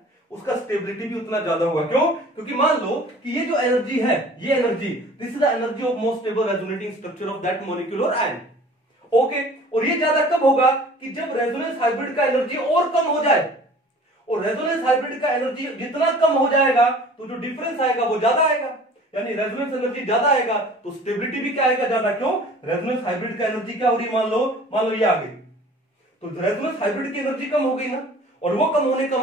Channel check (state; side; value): normal; both; correlation 0.47